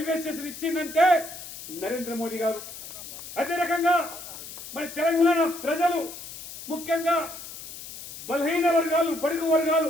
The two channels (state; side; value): noise; left; hiss, 12 dB below the sound